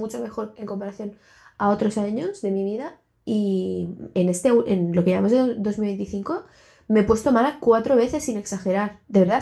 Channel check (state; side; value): identical; both; correlation 1.00